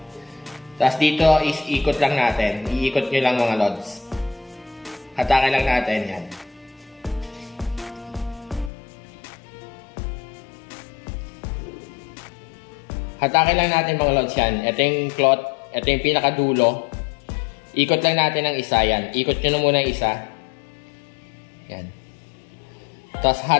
Tapos dito is ikot lang natin. Iikot nyo lang mga lods. Hatakin lang natin. Yan. Hatakin lang natin mga lods yan. Ito yung cloth. Ito yung pinaka dulo. Ikot lang natin ang isa, yan. Ikot nyo na muna ang isa. Yan. Tapos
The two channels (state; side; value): drops out; right; at 8.7 s